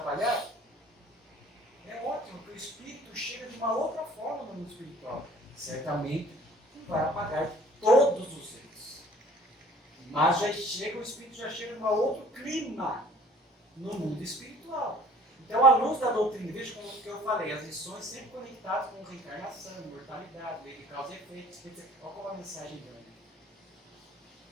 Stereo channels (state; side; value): normal; both; correlation 0.52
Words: é ótimo, porque o espírito chega de uma outra forma no mundo espiritual. Certamente não vai apagar todos os erros. Mas o espírito já chega de um outro clima no mundo espiritual. Então, à luz da doutrina, veja como que eu falei, as lições sempre conectadas com reencarnação, mortalidade, lei de causa e efeito. Olha como a mensagem grande.